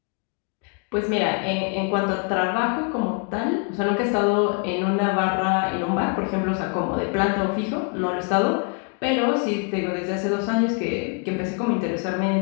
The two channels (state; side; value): quieter; right; 39.8 dB